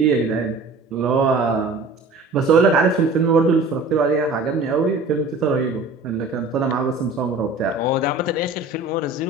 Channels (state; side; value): quieter; left; 3.3 dB